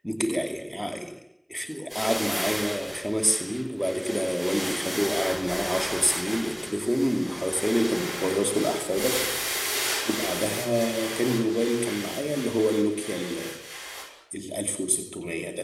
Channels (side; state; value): both; identical; correlation 1.00